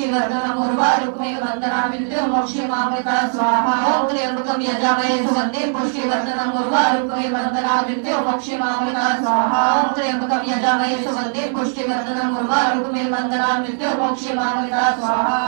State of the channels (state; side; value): silent; left; 66 dB below the other